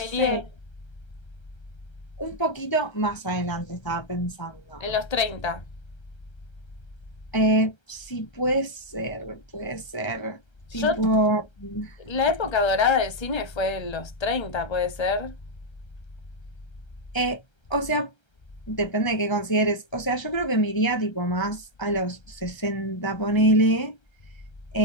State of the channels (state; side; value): late; right; 1.3 ms